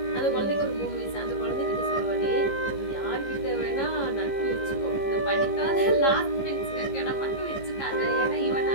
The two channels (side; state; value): right; late; 15 ms